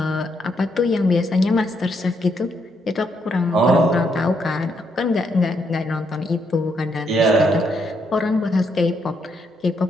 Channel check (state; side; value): normal; both; correlation 0.76